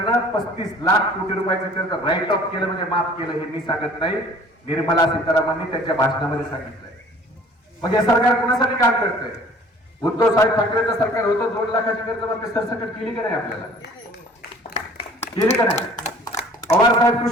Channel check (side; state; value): both; normal; correlation 0.50